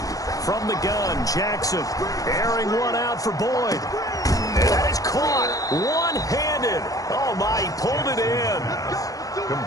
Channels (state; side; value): late; right; 0.17 ms